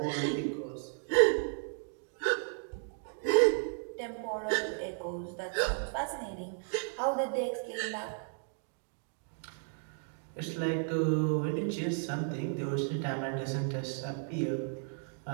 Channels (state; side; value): silent; left; 55 dB below the other